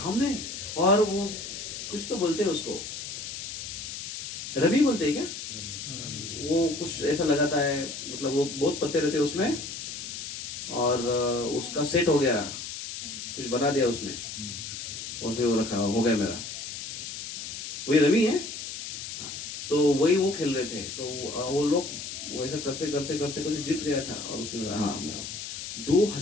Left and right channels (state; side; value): noise; left; hiss, 7 dB below the sound